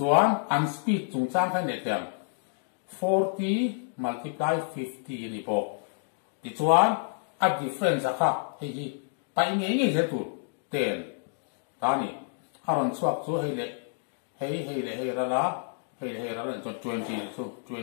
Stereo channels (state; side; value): silent; right; digital silence